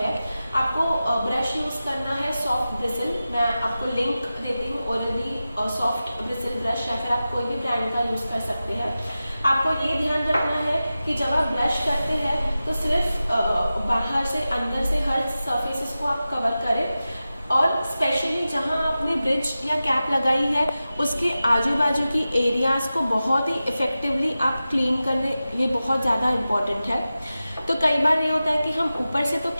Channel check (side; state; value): both; inverted; correlation -0.94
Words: आपको ब्रश यूज करना है सॉफ्ट ब्रिसल, मैं आपको लिंक देती हूँ, ओरल-बी सॉफ्ट ब्रिसल ब्रश, या फिर आप कोई भी ब्रांड का यूज कर सकते हैं। आपको ये ध्यान रखना है कि जब आप ब्रश करते हैं तो सिर्फ बाहर से अंदर से हर सरफेसेस को आप कवर करें, और स्पेशली जहां आपने ब्रिज या कैप लगाई है उसके आजू बाजू की एरियाज को बहुत ही इफेक्टिवली आप क्लीन करने, ये बहुत ज़्यादा इम्पोर्टेंट है। तो कई बार ये होता है कि हम ऊपर से तो